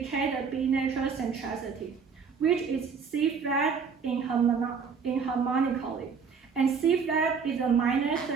the B natural centricity, which is C flat in harmonically, and C flat is a minor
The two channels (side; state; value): left; quieter; 5.9 dB